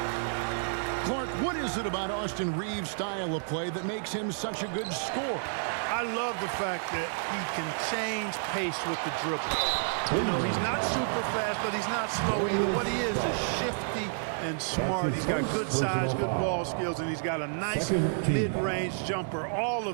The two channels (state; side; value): silent; left; digital silence